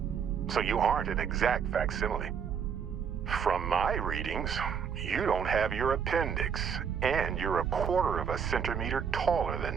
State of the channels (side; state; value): left; quieter; 7.1 dB